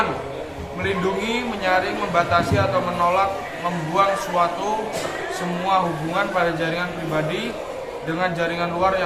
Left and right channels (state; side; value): identical; both; correlation 1.00